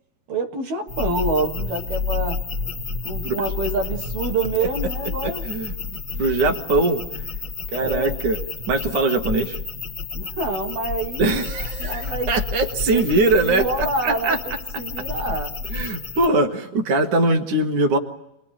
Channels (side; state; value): left; late; 9.8 ms